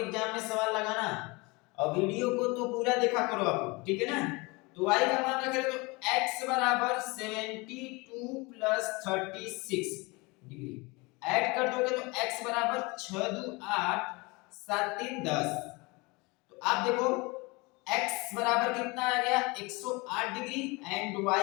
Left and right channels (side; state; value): right; quieter; 25.9 dB